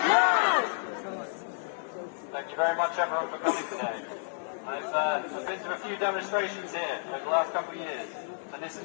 Thank you very much, everyone, for coming today. I've been to a few demonstrations here over the last couple of years, and this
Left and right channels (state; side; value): silent; right; 56 dB below the other